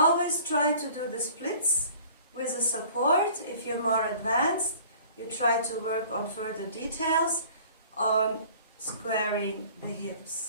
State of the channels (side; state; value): both; inverted; correlation -0.50